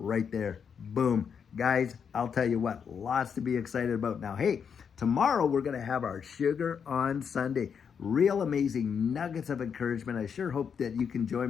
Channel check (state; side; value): quieter; right; 6.9 dB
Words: there. Boom. Guys, I'll tell you what, lots to be excited about. Now, hey, tomorrow we're going to have our Sugar on Sunday. Real amazing nuggets of encouragement. I sure hope that you can